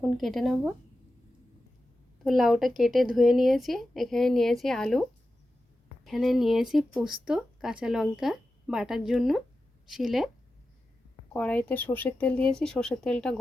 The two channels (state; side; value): normal; both; correlation 0.92